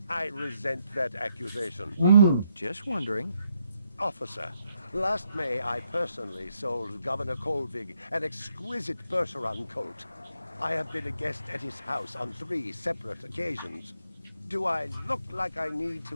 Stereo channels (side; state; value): both; inverted; correlation -0.77